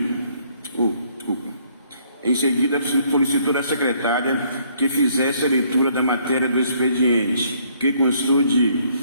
Em seguida, solicitou da secretária que fizesse a leitura da matéria do expediente, que constou de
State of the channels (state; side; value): inverted; both; correlation -0.66